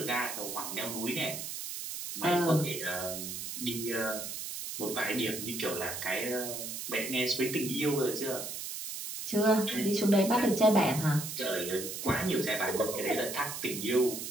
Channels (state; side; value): noise; right; hiss, 6 dB below the sound